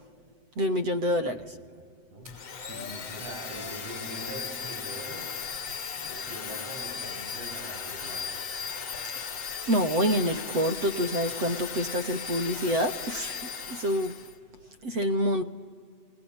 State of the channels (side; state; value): left; late; 7.9 ms